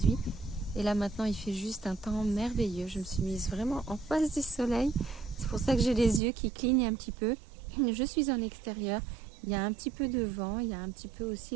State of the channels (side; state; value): left; drops out; at 6.2 s